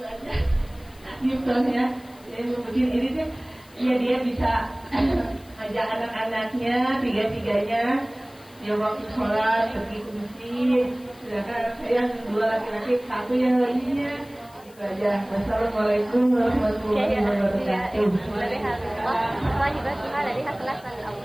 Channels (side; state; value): left; noise; hiss, 26 dB below the sound